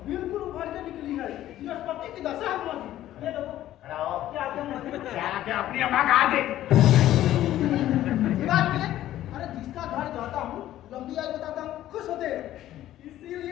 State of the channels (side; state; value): right; quieter; 13.3 dB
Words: बिल्कुल उभर के निकली है। बृहस्पति की दशा है मामा जी। ये देखो। खड़ा हो। क्या क्या मामा जी? क्या अपनी अम्मा का हाथ देख। ये बात के अरे जिसका घर जाता हूँ लंबी आयु बताता हूँ खुश होते हैं,